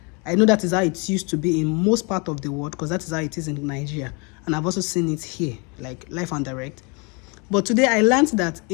I know that is how it used to be in most part of the world, because that is how it is in Nigeria, and I've also seen it here, like live and direct. But today I learned that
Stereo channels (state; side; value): quieter; right; 31.7 dB